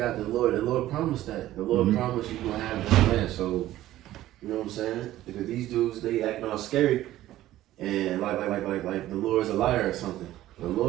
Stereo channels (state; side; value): quieter; left; 14.5 dB